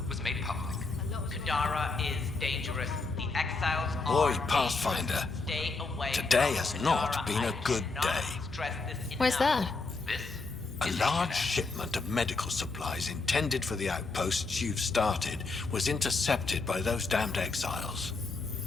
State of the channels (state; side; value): quieter; right; 3.8 dB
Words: was made public. Kadara is dangerous. The exiles Boy, are Pathfinder, dangerous. Stay away today from has not Kadara. been a I good cannot day. stress this Why's enough. that? This A is large HNS. shipment of medical supplies intended for the outposts you've started was intercepted by those damned exiles.